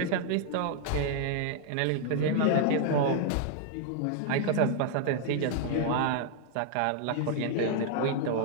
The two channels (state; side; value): different; both; correlation 0.00